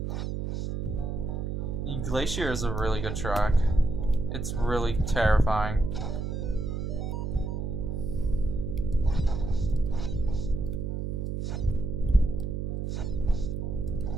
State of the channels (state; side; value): noise; right; hum, 3 dB below the sound